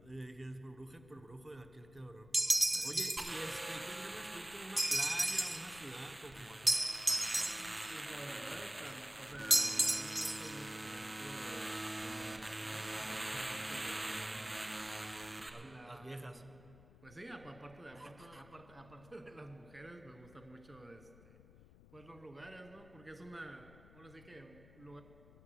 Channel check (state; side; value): noise; left; rumble, 21 dB below the sound